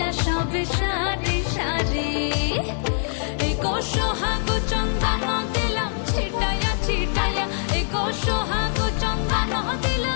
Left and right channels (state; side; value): silent; right; digital silence